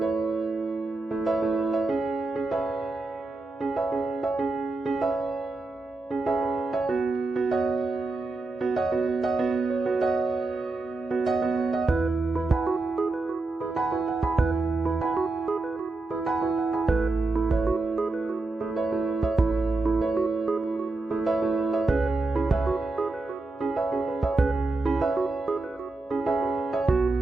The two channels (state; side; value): quieter; left; 3.3 dB